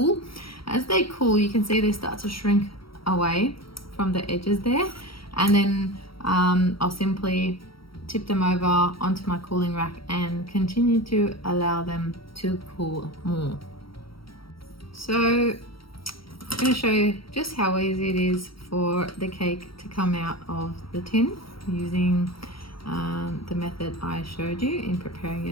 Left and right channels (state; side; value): late; right; 0.75 ms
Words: As they cool, you can see they start to shrink away from the edges there. And then I'll simply tip them over onto my cooling rack and continue to allow them to cool more. So I'm going to show you just how easy it is for the cake to come out of the tin using the method I showed you in preparing